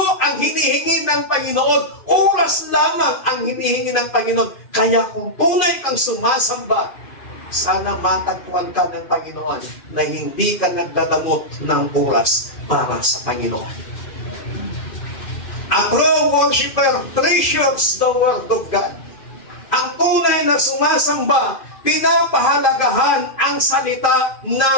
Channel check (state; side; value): late; right; 2.5 ms